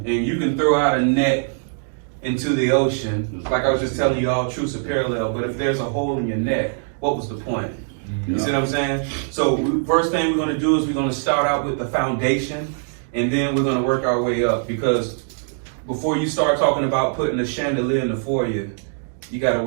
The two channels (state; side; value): silent; left; digital silence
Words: you can throw out a net into the ocean, like I was just telling you all, truths are parallel, but if there's a hole in your net, what was the point? You see what I'm saying? So first thing we're going to do is we're going to start out with the foundation, and then we're going to work our way up, because before you start talking about putting a chandelier in the foyer, you got to